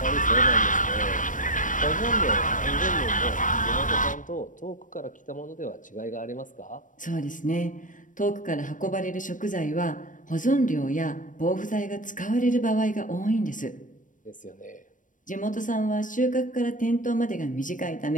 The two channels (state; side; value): late; right; 0.38 ms